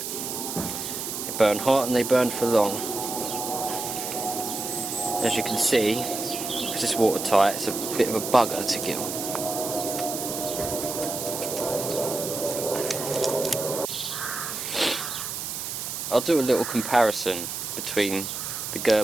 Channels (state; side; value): noise; right; hiss, 5 dB below the sound